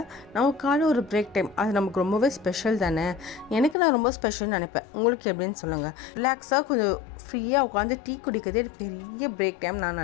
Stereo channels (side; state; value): right; drops out; at 3.8 s